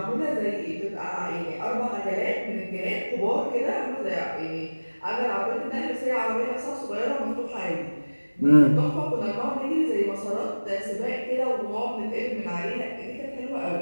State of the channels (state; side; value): inverted; both; correlation -1.00